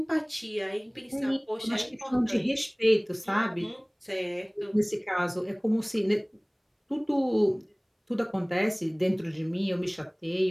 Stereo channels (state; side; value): identical; both; correlation 1.00